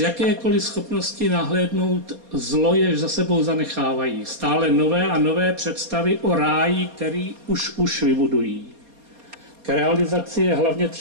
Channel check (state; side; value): late; left; 4.2 ms